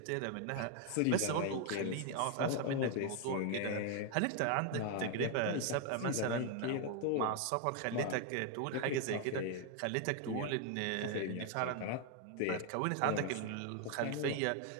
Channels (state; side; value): different; both; correlation 0.01